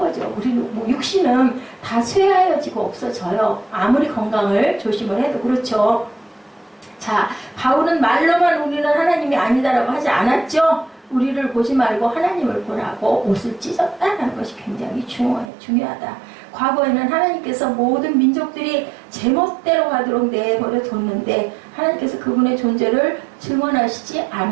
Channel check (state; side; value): drops out; left; at 15.5 s